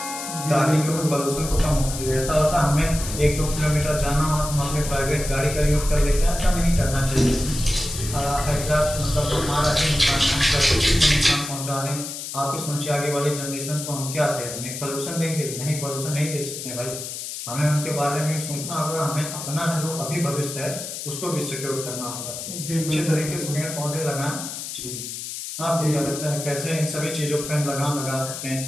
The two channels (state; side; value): noise; left; hiss, 7 dB below the sound